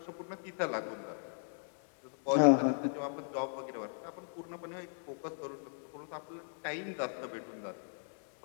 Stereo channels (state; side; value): silent; right; digital silence